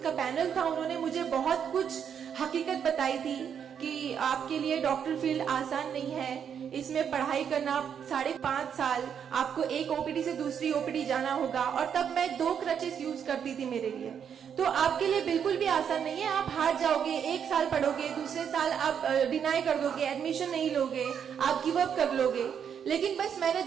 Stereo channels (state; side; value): quieter; left; 7.9 dB